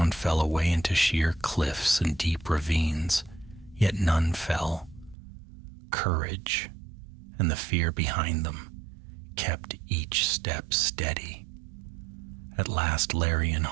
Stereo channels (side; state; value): left; drops out; at 5.2 s